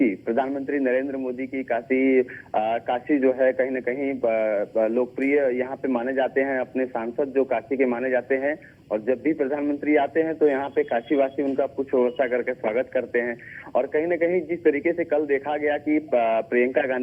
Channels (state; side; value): identical; both; correlation 1.00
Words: प्रधानमंत्री नरेंद्र मोदी की काशी जो है कहीं ना कहीं लोकप्रिय यहाँ पे माने जाते हैं, अपने सांसद जो काशी के माने जाते हैं, और जब भी प्रधानमंत्री आते हैं तो यहाँ पे काशीवासी उनका कुछ व्यवस्था करके स्वागत करते हैं। और कहीं ना कहीं जिस तरीके से कल देखा गया कि प्रियंका